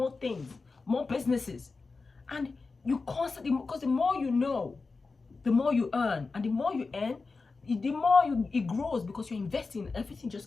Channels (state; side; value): quieter; right; 4.1 dB